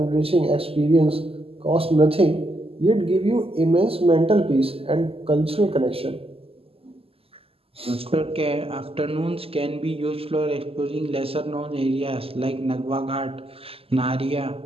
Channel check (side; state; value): left; late; 0.28 ms